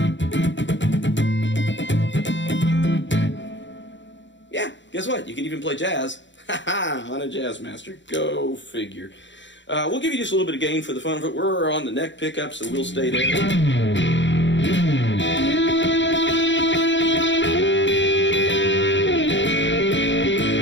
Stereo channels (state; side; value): late; right; 0.54 ms